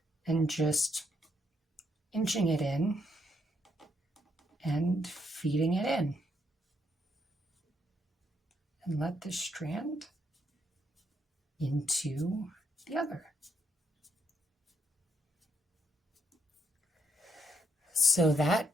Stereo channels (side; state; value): both; normal; correlation 0.75